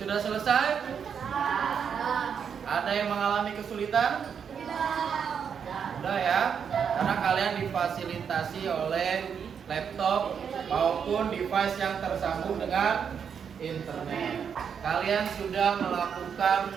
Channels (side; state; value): left; quieter; 7.2 dB